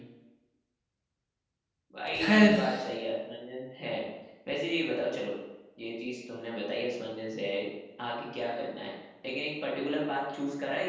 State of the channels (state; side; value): identical; both; correlation 1.00